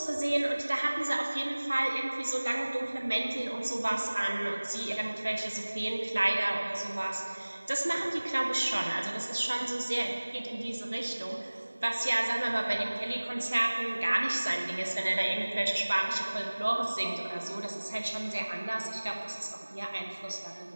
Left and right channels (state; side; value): inverted; both; correlation -1.00